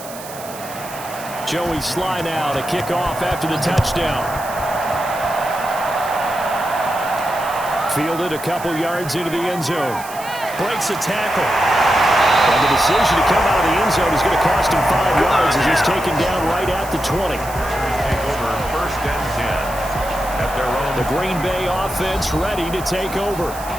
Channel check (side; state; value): right; noise; hiss, 15 dB below the sound